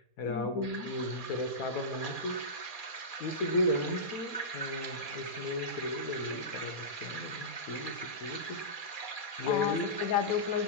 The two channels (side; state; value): right; late; 4.2 ms